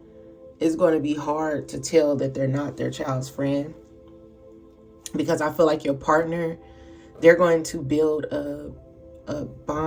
it's going to be hard to tell that they're not their child's friend, because I feel like your partner, they're going to build a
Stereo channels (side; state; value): both; identical; correlation 1.00